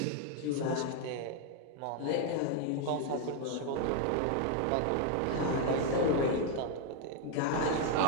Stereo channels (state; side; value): different; both; correlation 0.00